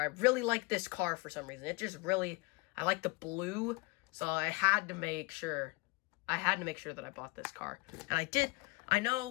I really like this car for some reason. It just really, I like the blue, so I had to make sure that I bought this car. And I did. I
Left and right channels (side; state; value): right; quieter; 26.7 dB